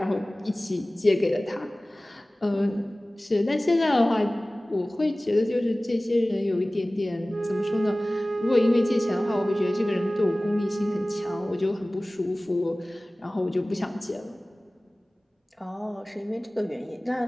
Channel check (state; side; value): normal; both; correlation 0.98